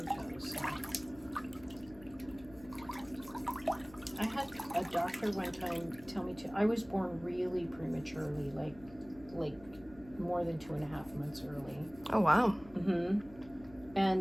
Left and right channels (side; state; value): left; noise; hum, 20 dB below the sound